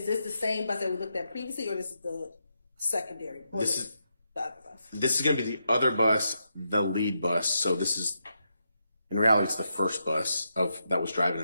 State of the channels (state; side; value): inverted; both; correlation -0.83